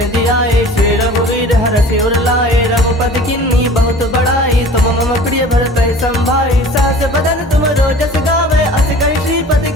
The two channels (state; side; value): normal; both; correlation 0.43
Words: जियाए श्री रघुवीर हरषि उर लाए रघुपति किन्नी बहुत बड़ाई तुम मम प्रिय भरत संभाई सास बदन तुम रोजस गावे अस कहि श्रीपति